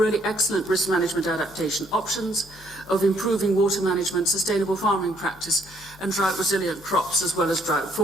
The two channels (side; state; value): both; normal; correlation 0.67